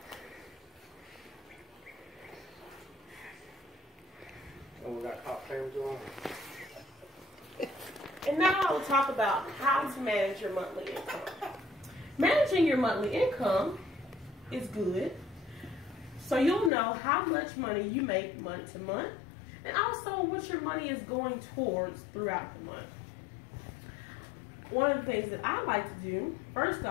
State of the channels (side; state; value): right; drops out; at 16.7 s